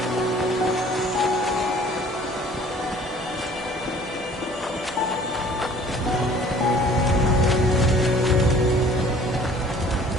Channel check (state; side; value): normal; both; correlation 0.52